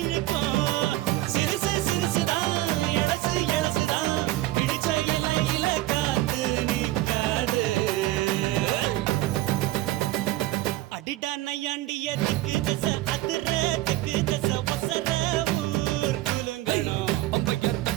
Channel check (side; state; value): left; quieter; 16.8 dB